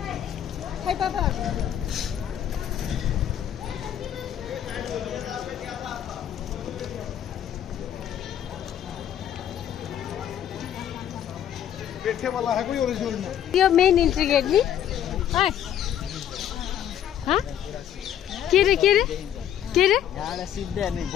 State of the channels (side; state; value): right; quieter; 10.3 dB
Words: खै पापा यो मेन इन्ट्री गेट नि के रे के रे के रे